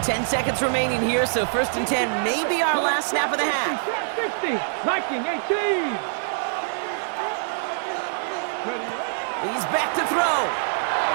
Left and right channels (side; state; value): left; silent; digital silence